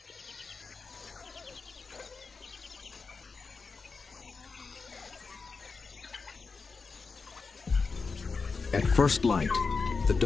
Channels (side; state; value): right; quieter; 4.6 dB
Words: At first light, the